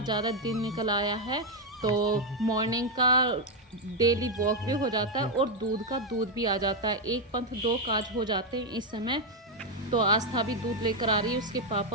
ज़्यादा दिन निकल आया है। तो मॉर्निंग का डेली वॉक भी हो जाता है और दूध भी आ जाता है। एक पंथ 2 काज हो जाते हैं इस समय। तो आस्था भी दूध लेकर आ रही है, उसके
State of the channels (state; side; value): normal; both; correlation 0.03